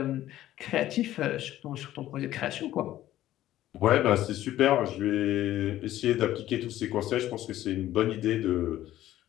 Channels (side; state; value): right; quieter; 13.8 dB